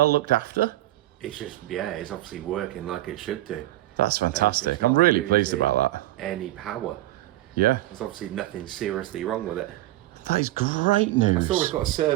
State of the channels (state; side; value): quieter; left; 16.3 dB